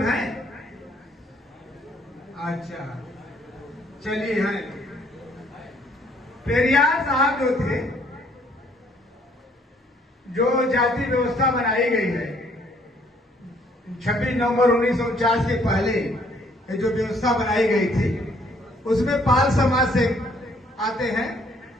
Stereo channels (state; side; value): normal; both; correlation 0.64